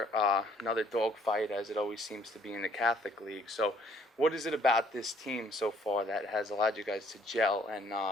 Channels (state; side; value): normal; both; correlation 0.62